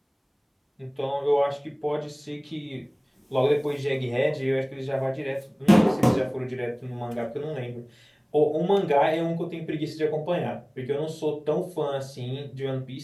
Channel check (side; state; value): both; identical; correlation 1.00